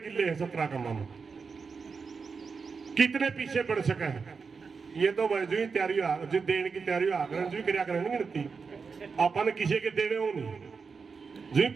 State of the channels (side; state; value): left; quieter; 5.2 dB